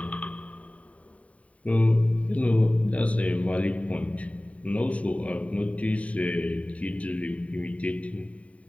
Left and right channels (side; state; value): right; late; 0.067 ms